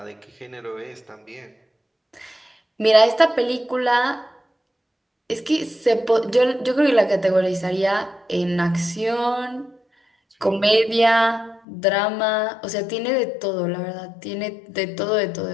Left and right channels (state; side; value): drops out; right; at 11.6 s